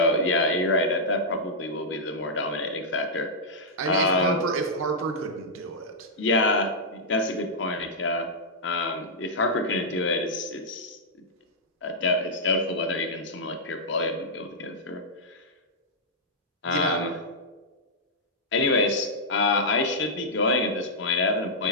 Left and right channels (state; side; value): normal; both; correlation -0.10